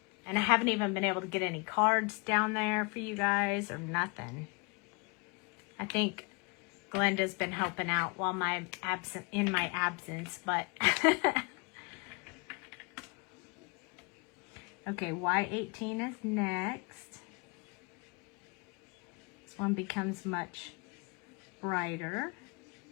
And I haven't even been able to get any cards down there for you guys or nothing. I think Glenda's been helping out while in my absence, but okay, Y18 is next. This one becomes much brighter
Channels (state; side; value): quieter; right; 31.5 dB